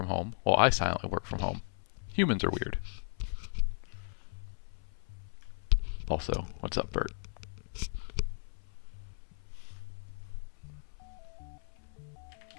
home, while I silently work from home. Humans are weird. Also, what's up, Bert?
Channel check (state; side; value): silent; right; 54 dB below the other